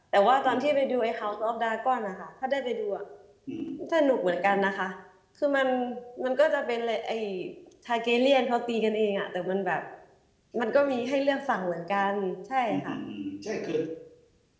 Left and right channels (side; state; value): both; identical; correlation 1.00